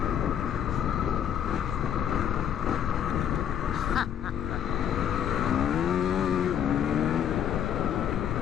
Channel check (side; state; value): right; quieter; 9.4 dB